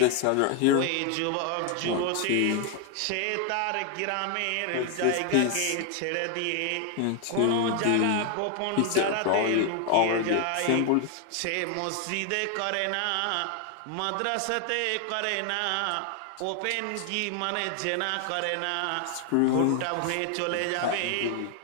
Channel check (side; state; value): both; different; correlation 0.00